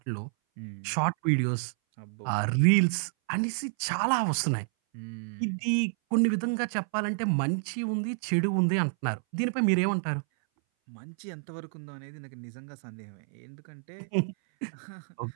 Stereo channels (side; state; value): left; silent; 58 dB below the other